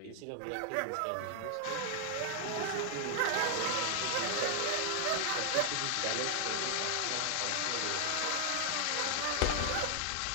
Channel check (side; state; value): both; different; correlation 0.00